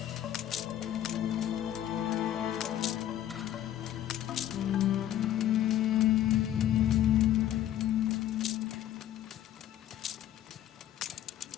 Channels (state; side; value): quieter; right; 11.9 dB